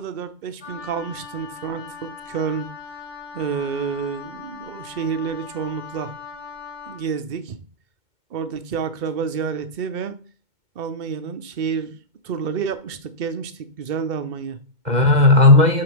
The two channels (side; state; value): left; late; 2.2 ms